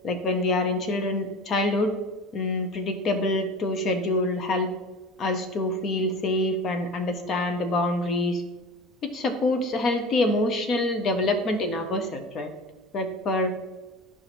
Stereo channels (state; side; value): normal; both; correlation 0.35